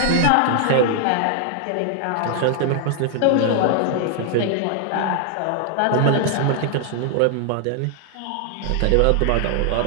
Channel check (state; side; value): different; both; correlation 0.00